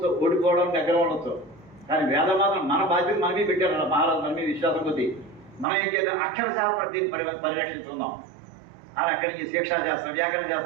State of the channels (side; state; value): left; drops out; at 5.7 s